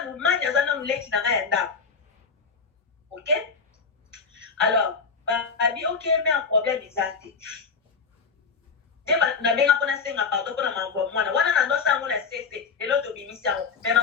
lumanya zana muleki na ya nda OK alors abi OK mais un problème exact na benga pona senga pardon pona mambo mwana wana na ndosa ngona sese lelo to bimisa mais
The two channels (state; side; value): quieter; right; 5.3 dB